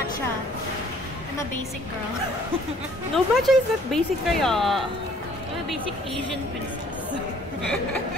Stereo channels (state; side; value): normal; both; correlation 0.57